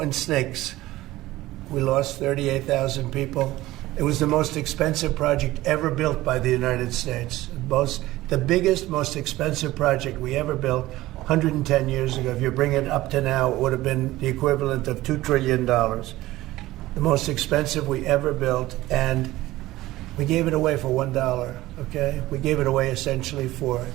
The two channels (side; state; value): left; quieter; 17.1 dB